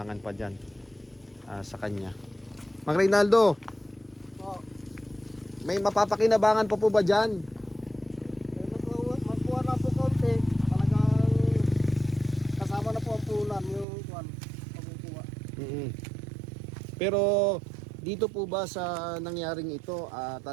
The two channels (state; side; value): drops out; left; at 13.9 s